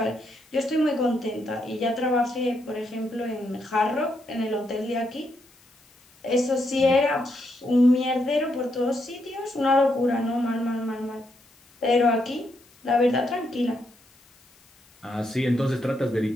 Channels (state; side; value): noise; left; hiss, 30 dB below the sound